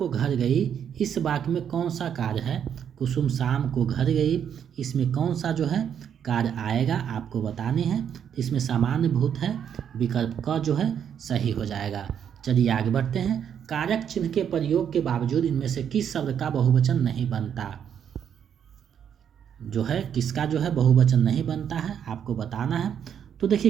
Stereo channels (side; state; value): left; quieter; 8.5 dB